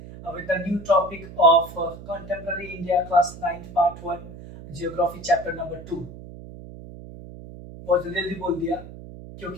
with a new topic of Contemporary India Class 9 Part 1 Geography Chapter number 2. बहुत जल्दी बोल दिया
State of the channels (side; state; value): right; noise; hum, 14 dB below the sound